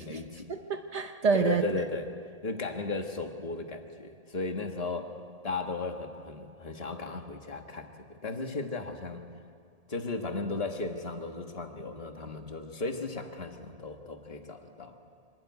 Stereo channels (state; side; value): late; left; 1.8 ms